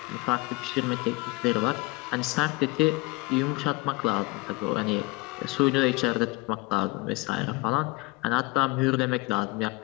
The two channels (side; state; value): right; quieter; 23.8 dB